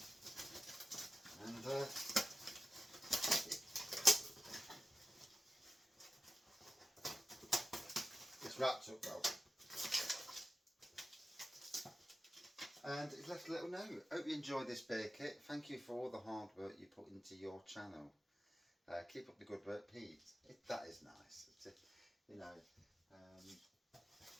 And it's wrapped up well. And it's left a little note. Hope you enjoy this beer kit. Thank you for all the hard work you put into your channel. Keep up the good work, Pete. That is nice. You know,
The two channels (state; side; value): normal; both; correlation 0.94